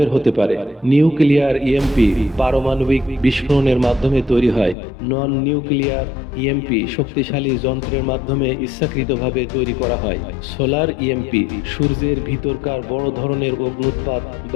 হতে পারে। নিউক্লিয়ার ইএমপি পারমাণবিক বিস্ফোরণের মাধ্যমে তৈরি হয়। নন নিউক্লিয়ার ইএমপি শক্তিশালী যন্ত্রের মাধ্যমে ইচ্ছাকৃতভাবে তৈরি করা হয়। সোলার ইএমপি সূর্যের ভিতরকার বড় ধরনের অগ্নুৎপাত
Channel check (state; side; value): drops out; right; at 4.8 s